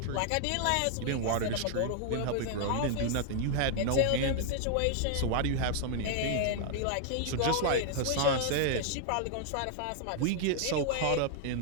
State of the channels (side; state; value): both; different; correlation 0.00